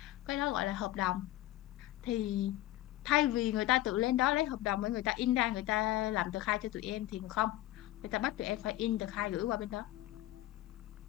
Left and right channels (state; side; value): quieter; right; 15.5 dB